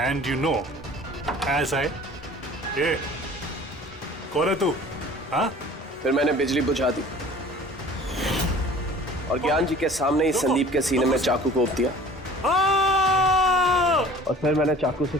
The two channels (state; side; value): normal; both; correlation 0.46